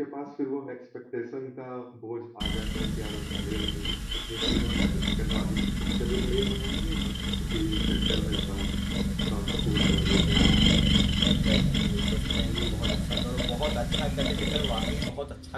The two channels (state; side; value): identical; both; correlation 1.00